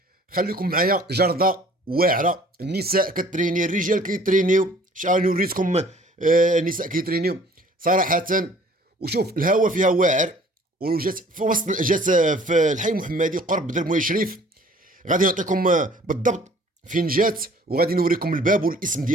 خليكم معايا. جردة واعرة، النساء كتريني، الرجال كيترينيو. شحال وريتكم النساء كيترينيو صراحة. وشوف الهواء فيها واعر، وجات في وسط، جات في الحي المحمدي قرب درموي شريف. غادي نعطيكم بالضبط فين جات، وغادي نوريكم الباب والاسم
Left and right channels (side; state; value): both; normal; correlation 0.53